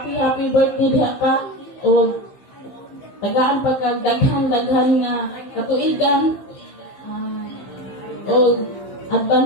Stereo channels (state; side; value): late; right; 15 ms